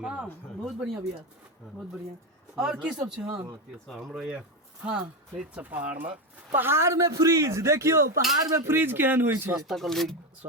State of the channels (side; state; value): both; normal; correlation 0.13